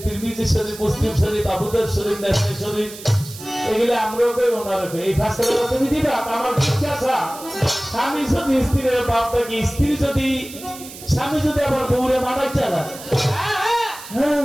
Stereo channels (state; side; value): noise; right; hiss, 15 dB below the sound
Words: তিরমিজি শরীফ মুসলিম শরীফ আবু দাউদ শরীফ নাসাই শরীফ এগুলা আমরাও কই ওনারা কই এই ফায়সালাটা তুমি দিবা আমার জিজ্ঞাসা স্বামী যদি স্ত্রীর বাপ থাকে স্ত্রী যদি স্বামী যদি আবার বউরে মারাই চালায়